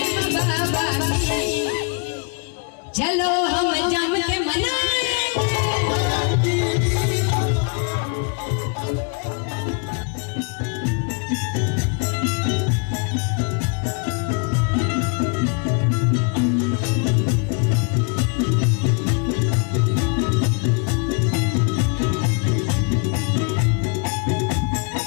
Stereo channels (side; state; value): right; quieter; 36.9 dB